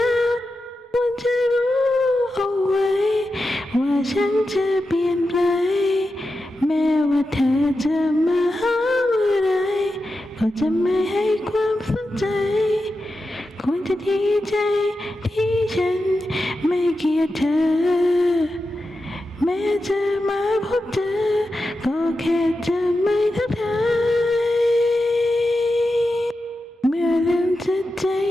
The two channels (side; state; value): both; normal; correlation 0.90